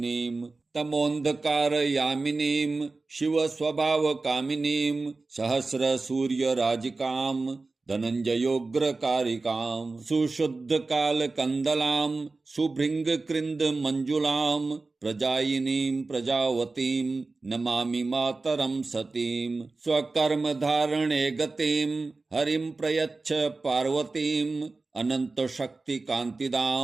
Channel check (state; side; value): quieter; left; 3.6 dB